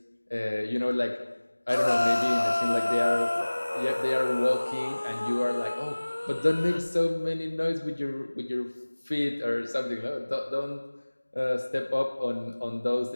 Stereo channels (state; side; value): inverted; both; correlation -1.00